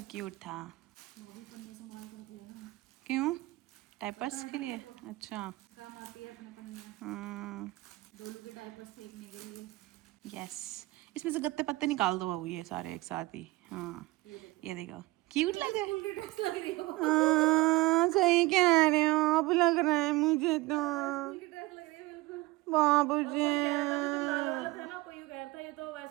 क्यूट था। वो भी पन्ने संभाल के रख लेना। क्यों? डायपर्स के लिए? अच्छा काम आती है अपने पन्नियाँ, हाँ डोलू के डायपर्स फेंकने के लिए। यस, इसमें से गत्ते पत्ते निकाल दो बाबू ये सारे एक साथ ही। हाँ ये देखो क्यूट लग रहा है। हाँ सही कह रहे हो आप, लग रहा है मुझे तो बाबू जी। ये तो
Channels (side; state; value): left; quieter; 21.1 dB